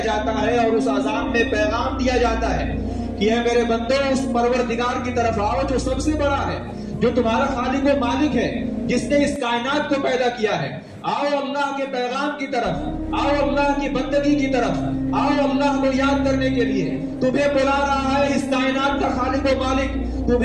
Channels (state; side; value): identical; both; correlation 1.00